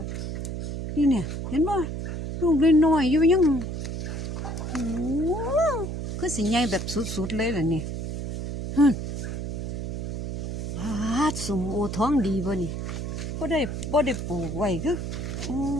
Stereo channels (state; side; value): noise; right; hum, 4 dB below the sound